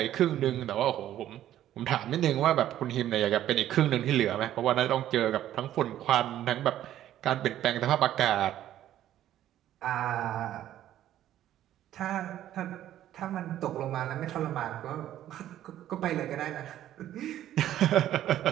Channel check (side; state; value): left; quieter; 12.3 dB